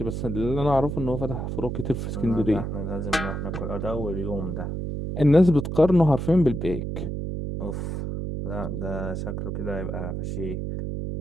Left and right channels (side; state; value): right; noise; hum, 3 dB below the sound